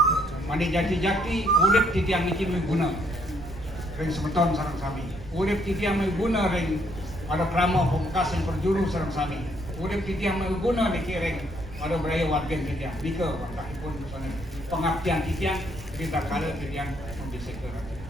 Mandi jati-jati urip titiang niki guna. Ring semeton sareng sami. Urip titiang guna ring ada krama pembekas yang berjuru sareng sami. Urip titiang guna niki ring ada beraya warga titiang. Nika pun pengabdian titiang kita kala titiang membisik ke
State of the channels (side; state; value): right; noise; rumble, 14 dB below the sound